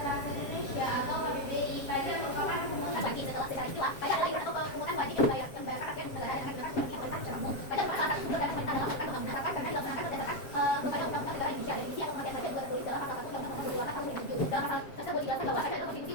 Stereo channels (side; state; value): right; late; 7.4 ms